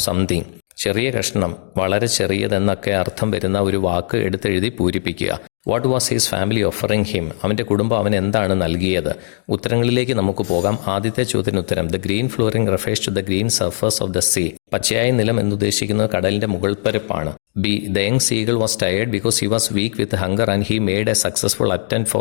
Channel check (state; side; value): silent; right; 65 dB below the other